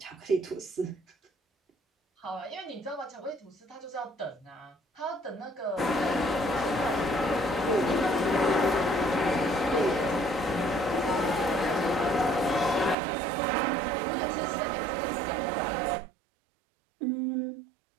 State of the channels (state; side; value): drops out; left; at 13.0 s